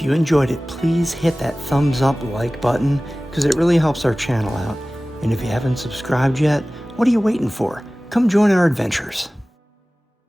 you enjoyed it, please hit that thumbs up like button because it really helps our channel out. And if you haven't subscribed yet, what are you waiting for? Come join our adventures.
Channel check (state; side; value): normal; both; correlation 0.98